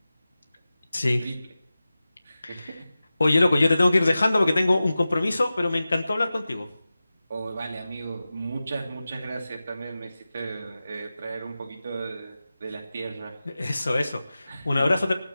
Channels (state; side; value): inverted; both; correlation -0.94